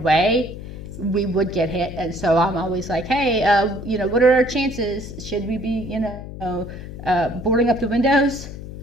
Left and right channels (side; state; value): left; noise; hum, 11 dB below the sound